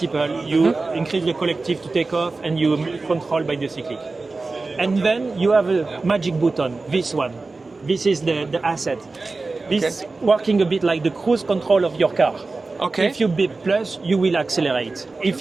you increase the collective to take off and you control by the cyclic. And then you have a magic button, this one. This is the asset. This is working a bit like the cruise control of your car. Okay. If you beep plus, you will accelerate.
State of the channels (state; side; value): quieter; left; 3.7 dB